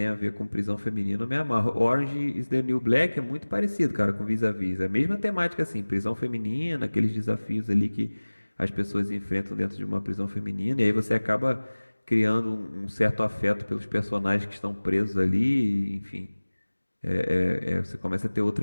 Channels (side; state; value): both; inverted; correlation -1.00